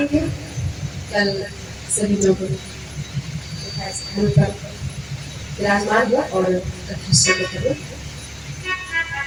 कल सभी लोग स्थान पर विराजमान हुआ और कथा शुरू करें।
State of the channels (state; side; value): identical; both; correlation 1.00